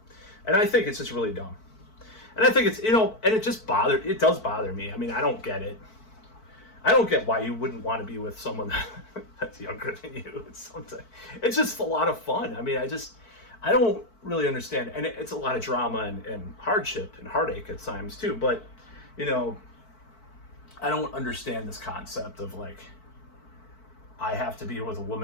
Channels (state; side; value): late; right; 4.5 ms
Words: and I think it's just really dumb. And I think it's and it does bother me. I mean, I don't get it. I don't get why you wouldn't want to be with someone that's younger than you. It's just a lot of fun. I mean, I don't really understand, and it's a lot of drama and hardship and heartache at times too. But I don't understand this concept of like I have to be with a